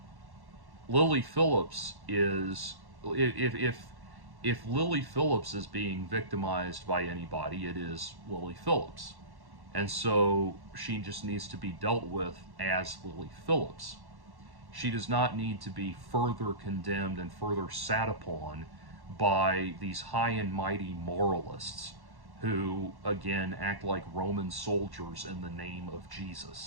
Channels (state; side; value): late; left; 1.1 ms